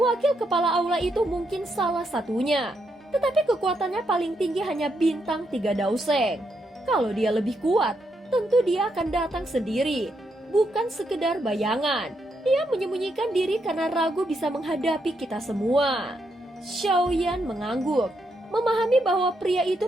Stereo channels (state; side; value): normal; both; correlation 0.79